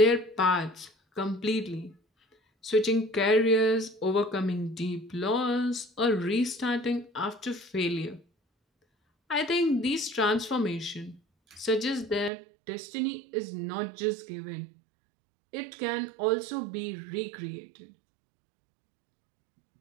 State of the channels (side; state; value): left; drops out; at 12.3 s